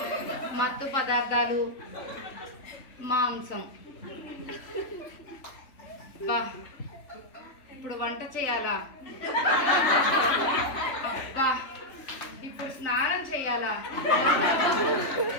మత్తు పదార్థాలు, మాంసం. బా, ఇప్పుడు వంట చేయాలా? అబ్బా, ఇప్పుడు స్నానం చేయాలా?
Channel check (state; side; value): late; right; 3.5 ms